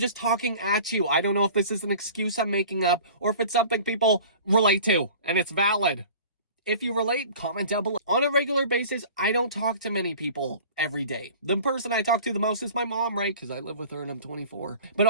talking at you. I don't know if this is an excuse I'm making up or if it's something people relate to and it's valid. If you relate, comment down below. On a regular basis, I don't talk to many people every day. The person I talk to the most is my mom, right? Because I live with her and I'm 24. But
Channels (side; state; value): both; inverted; correlation -0.43